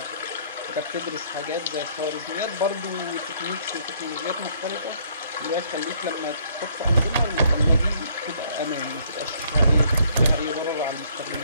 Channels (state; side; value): inverted; both; correlation -0.64